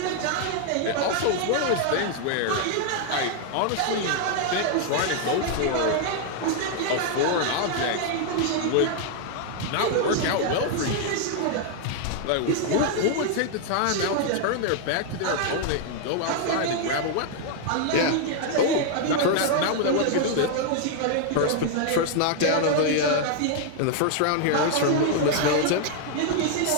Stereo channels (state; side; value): different; both; correlation 0.00